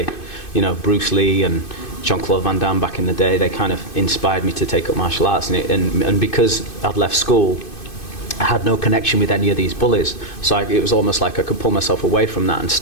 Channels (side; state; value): right; late; 2.5 ms